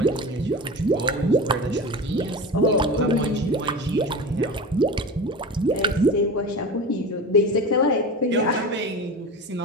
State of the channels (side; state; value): both; normal; correlation 0.29